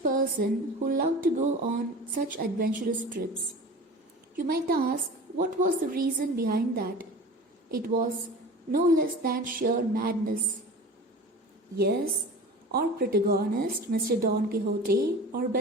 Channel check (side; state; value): both; normal; correlation 0.37